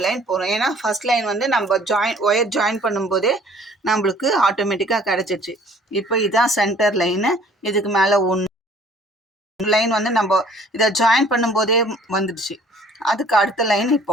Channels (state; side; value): normal; both; correlation 0.55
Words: லைன் போடுறோம். ஏன்னா ஃபஸ்ட் லைன் வந்து நம்ம ஒயர் ஜாயின் பண்ணும்போதே நம்மளுக்கு ஆட்டோமேட்டிக்காக கிடச்சிச்சு. இப்போ இதுதான் சென்டர் லைனு. இதுக்கு மேலே லைன் வந்து நம்ம இதை ஜாயின் பண்ணும்போதே வந்துடுச்சு. அதுக்கு அடுத்த லைன்